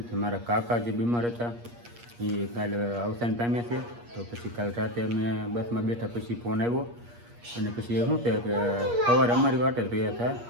છે. મારા કાકા જે બીમાર હતા એ કાલે અવસાન પામ્યા છે. તો પછી કાલ રાતે અમે બસમાં બેઠા પછી ફોન આવ્યો અને પછી શું છે કે સવારે અમારી વાટે જ રહ્યા હતા.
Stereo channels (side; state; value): left; late; 8.4 ms